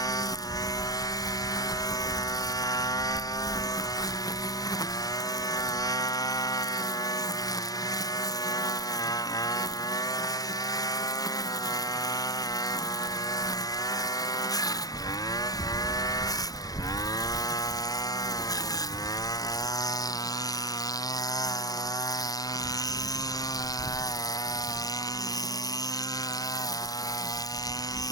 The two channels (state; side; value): late; right; 0.18 ms